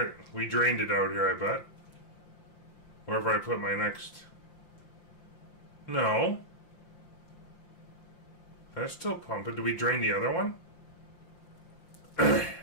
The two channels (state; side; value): late; right; 5.7 ms